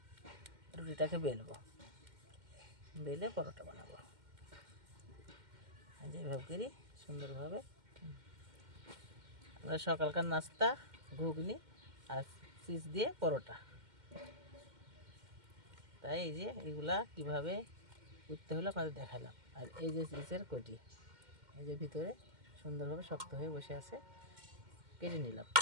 রুটিটাকে বেলবো, বেলে পরোটা বানাবো। যেভাবে করি সুন্দরভাবে আমরা সকালকার নাস্তা ঘুগনি আর চিজ দিয়ে পরোটা। তাই এই যে এগুলা কীভাবে করতে হলো আপনাদের দেখালাম। আর এই যে চিজের কটি, এই যে ভিতরে সুন্দরভাবে শক্ত হয়ে বসে আছে, কেটে নিলাম,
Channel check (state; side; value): late; left; 2.1 ms